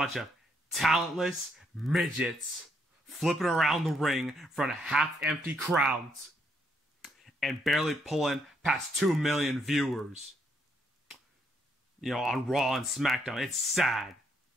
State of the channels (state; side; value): normal; both; correlation 0.73